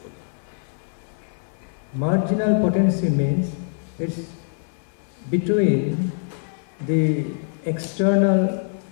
Marginal potency means it's between the external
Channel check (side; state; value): right; silent; digital silence